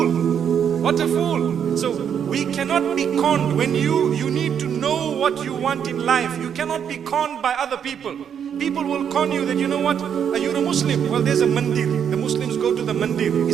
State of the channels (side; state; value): left; quieter; 8.2 dB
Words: What a fool! So we cannot be conned. When you need to know what you want in life. You cannot be conned by other people. People will con you that, you know what, are you a Muslim? Well, there's a mandir. The Muslims go to the mandir.